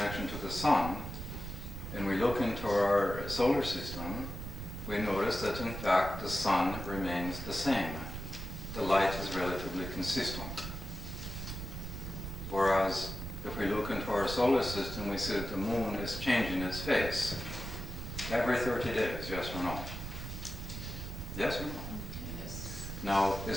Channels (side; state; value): right; noise; rumble, 7 dB below the sound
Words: to the sun, and we look into our solar system, we notice that in fact the sun remains the same. The light is relatively consistent. Whereas if we look into our solar system, we see that the moon is changing its face every 30 days, yes or no? Yes or no? Yes. Now,